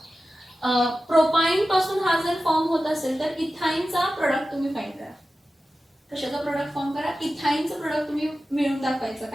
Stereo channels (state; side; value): normal; both; correlation 0.94